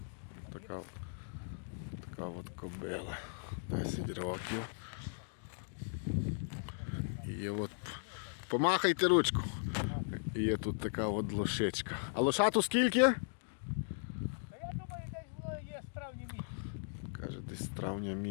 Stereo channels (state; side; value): silent; right; digital silence